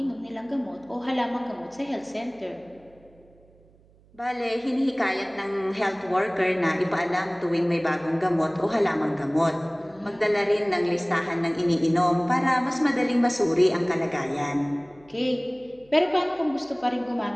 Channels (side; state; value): right; noise; hum, 29 dB below the sound